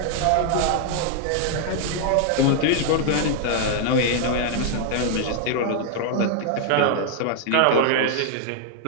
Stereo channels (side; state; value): both; different; correlation 0.00